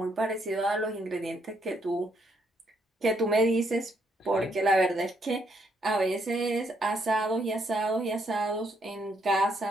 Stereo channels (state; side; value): normal; both; correlation 0.73